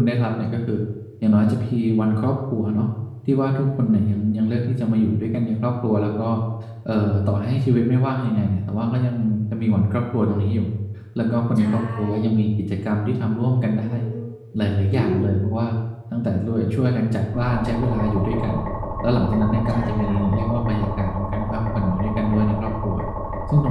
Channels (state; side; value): identical; both; correlation 1.00